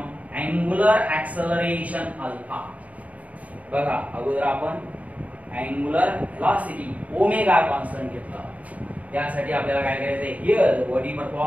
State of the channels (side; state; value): left; late; 0.070 ms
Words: angular acceleration alpha. बघा, अगोदर आपण angular velocity omega constant घेतला. त्यासाठी आपल्याला काय करायचं आहे, here the body